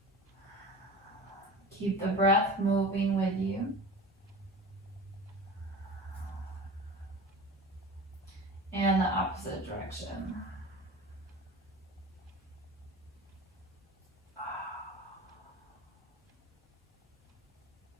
Keep the breath moving with you. And the opposite direction.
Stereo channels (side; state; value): both; normal; correlation 0.35